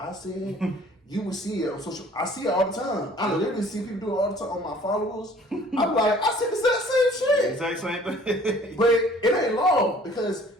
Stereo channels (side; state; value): both; normal; correlation 0.53